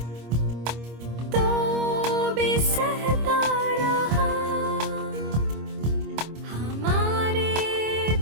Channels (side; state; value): left; late; 26 ms